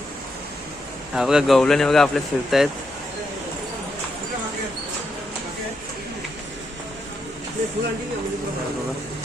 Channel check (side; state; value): right; noise; hum, 26 dB below the sound